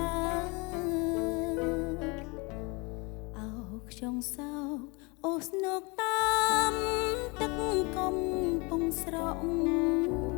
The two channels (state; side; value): quieter; right; 28.5 dB